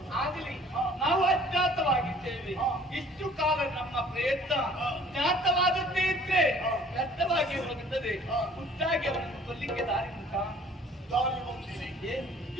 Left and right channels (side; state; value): both; normal; correlation 0.53